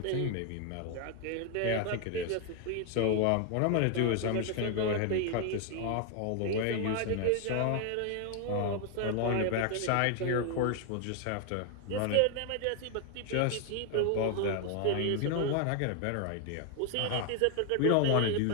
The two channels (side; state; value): both; different; correlation 0.01